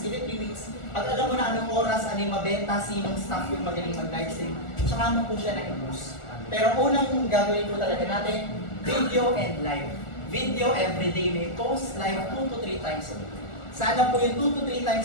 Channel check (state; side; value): late; right; 1.4 ms